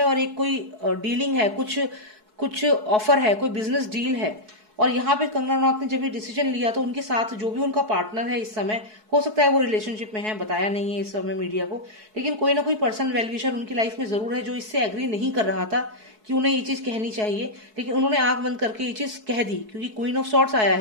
और एक कोई डीलिंग है, कुछ ऑफर है, कोई बिजनेस डील है। और यहाँ पे कंगना रनौत ने जब ये डिसीजन लिया तो उनके साथ जो भी उनका पार्टनर है इस समय, हो सकता है वो रिलेशनशिप में है, बताया नहीं है इस समय मीडिया को, लेकिन कोई ना कोई पर्सन वेलविशर उनकी लाइफ में जरूर है जो इससे एग्री नहीं कर रहा था कि उन्हें ये चीज कहनी चाहिए, लेकिन उन्होंने आंख बंद करके ये चीज कह दी, क्योंकि क्वीन ऑफ सॉर्ड्स आया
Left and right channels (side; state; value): left; late; 4.7 ms